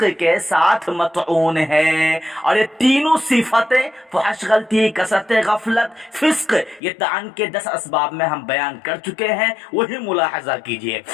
के साथ मतऊन है। और ये तीनों सिफतें फुहश गलती, कसरत गफलत, फिस्क, ये तान के 10 असबाब में हम बयान कर चुके हैं, वही मुलाहजा कीजिए।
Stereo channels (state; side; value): drops out; right; at 6.8 s